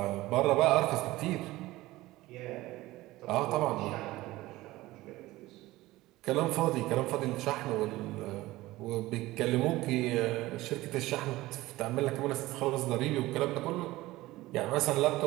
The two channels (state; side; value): quieter; left; 18.1 dB